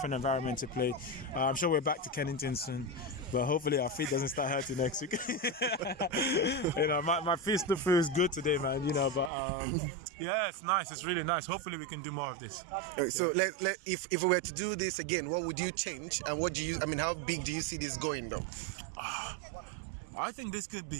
environment to play. I'm sure we're back to Kennington soon, but hopefully our feet doesn't start hurting next week. My feet still feels good today, man. But yeah, it's nice. It's really nice. Hopefully we can do more of this. So if we were to do this again, what would you change, and how big do you see this going, though? I think this could be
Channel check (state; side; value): drops out; left; at 9.3 s